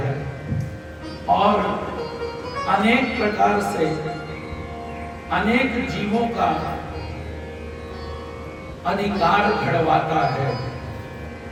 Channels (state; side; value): identical; both; correlation 1.00